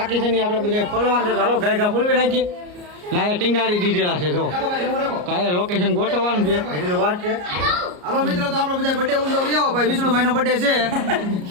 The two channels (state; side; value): late; left; 34 ms